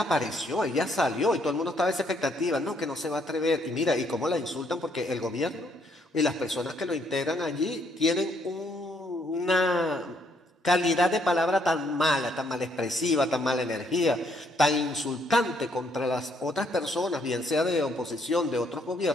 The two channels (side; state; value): both; normal; correlation 0.70